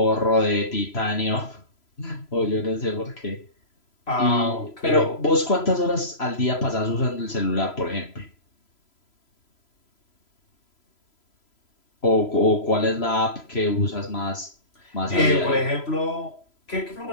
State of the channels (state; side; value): late; right; 3.0 ms